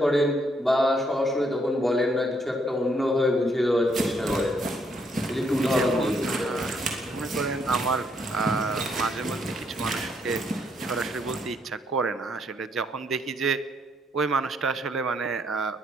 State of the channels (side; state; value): both; normal; correlation 0.72